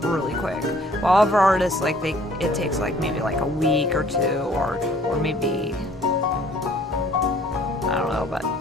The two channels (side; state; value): both; normal; correlation 0.56